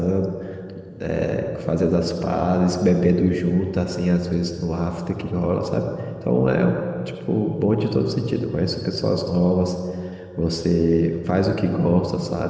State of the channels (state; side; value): identical; both; correlation 1.00